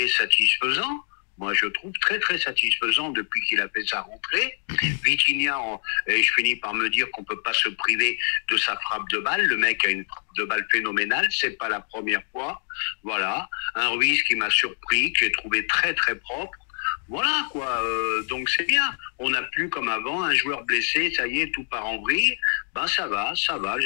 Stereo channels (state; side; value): silent; right; 60 dB below the other